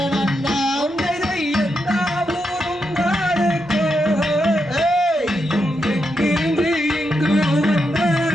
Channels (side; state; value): both; normal; correlation 0.84